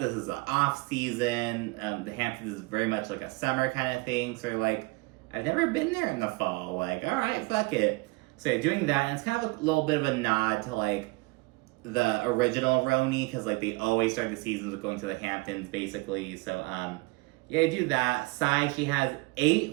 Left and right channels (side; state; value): left; quieter; 24.9 dB